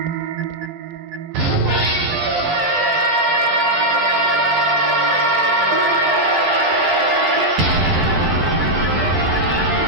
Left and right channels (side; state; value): left; late; 12 ms